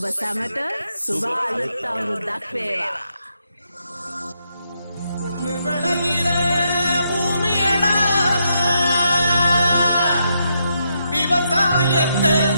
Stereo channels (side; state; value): both; inverted; correlation -0.80